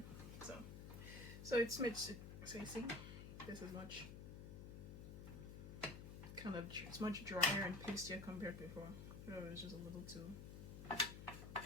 So it's much. So you see, this is much kind of, it's much drier and pastier compared to before. It was just a little too.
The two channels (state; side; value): noise; left; hum, 9 dB below the sound